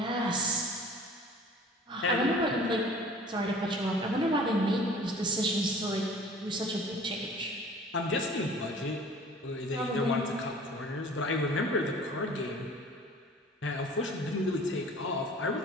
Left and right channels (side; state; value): both; normal; correlation 0.47